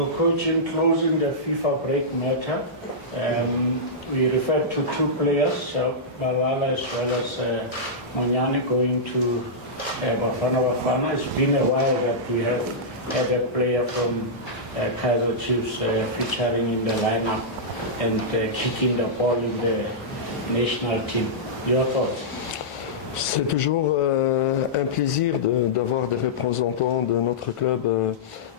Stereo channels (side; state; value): both; normal; correlation -0.12